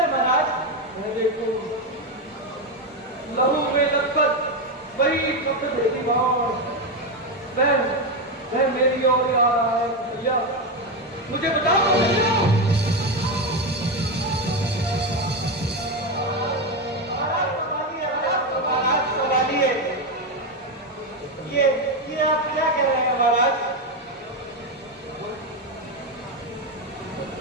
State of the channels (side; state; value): both; normal; correlation 0.11